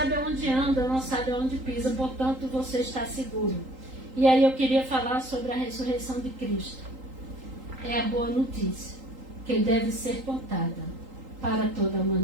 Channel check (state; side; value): late; left; 3.8 ms